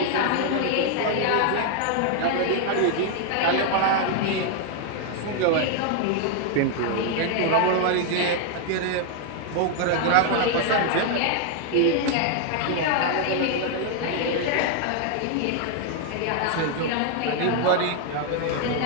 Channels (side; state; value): both; different; correlation 0.00